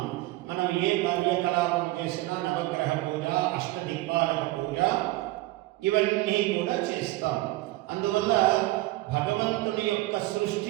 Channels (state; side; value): quieter; left; 18.7 dB